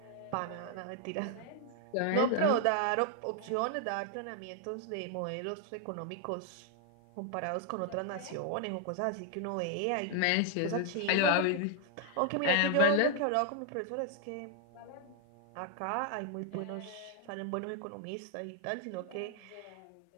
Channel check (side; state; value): both; different; correlation 0.00